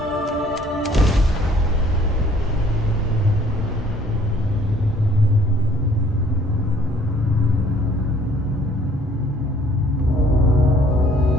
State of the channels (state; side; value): normal; both; correlation 0.59